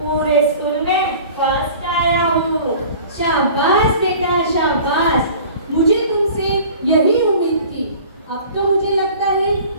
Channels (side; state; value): both; inverted; correlation -0.45